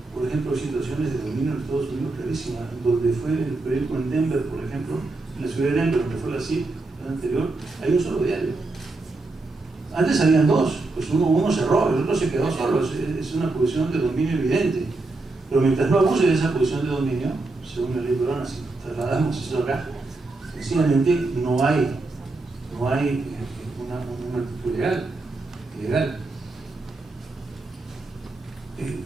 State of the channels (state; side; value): quieter; left; 3.3 dB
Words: Por ejemplo, situaciones de dominio en Estados Unidos clarísimas, donde fue el periódico en Denver, por ejemplo, en la ciudad de Denver, donde fue la CIP, el anterior, hay un solo diario. Antes habían 2, pues uno cerró, el otro se quedó solo, es una posición de dominio evidente. Pero mientras no abuse de esa posición de dominio, según la ley peruana, si trasladamos eso acá, sencillamente no hay una actitud legal.